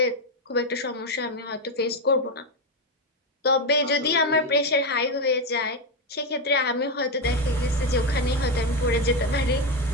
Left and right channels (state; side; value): normal; both; correlation 0.08